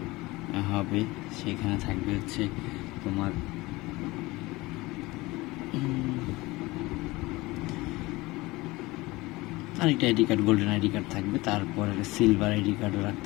হবে, সেখানে থাকবে হচ্ছে তোমার আরেকটা ID card, golden ID card থাকবে। তারপরে সিলভার আইডি কার্ডও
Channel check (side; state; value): right; quieter; 21.2 dB